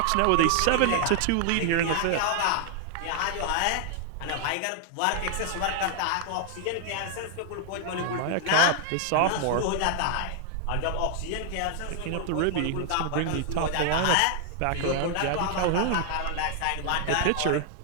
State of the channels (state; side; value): different; both; correlation 0.00